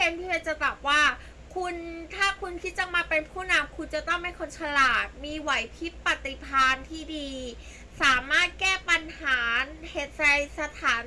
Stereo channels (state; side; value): identical; both; correlation 1.00